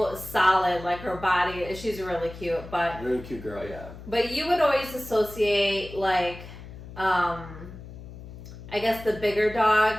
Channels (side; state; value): left; noise; hum, 14 dB below the sound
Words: solid, like her body. She's really cute, but really cute girl, yeah. But you would always associate like, I guess the bigger